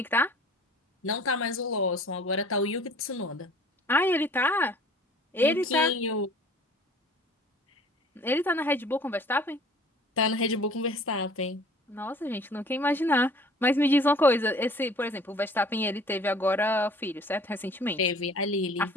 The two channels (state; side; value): normal; both; correlation 0.50